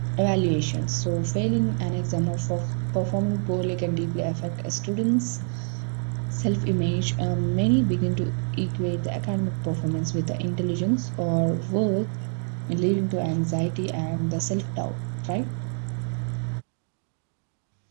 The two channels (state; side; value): silent; left; 56 dB below the other